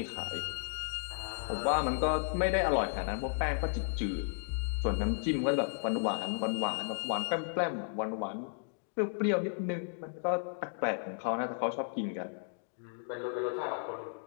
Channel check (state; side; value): silent; right; digital silence